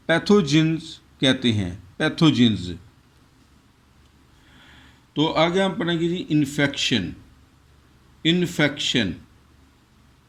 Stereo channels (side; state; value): both; identical; correlation 1.00